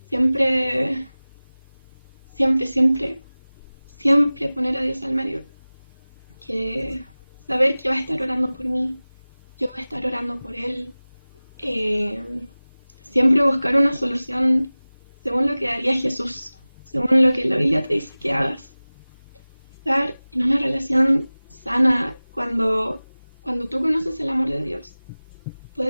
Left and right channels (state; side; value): inverted; both; correlation -0.98